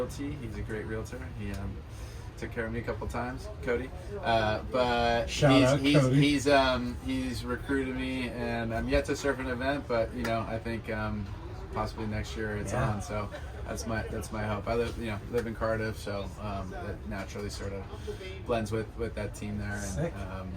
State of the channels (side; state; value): both; identical; correlation 1.00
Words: he's a great realtor. He took care of me a couple times, Cody. But he's recruited me, and I'm yet to surf an event, but I think possibly next year it's on. So that's my hope. I live in Cardiff, so that naturally sort of blends with that team there. And Sick.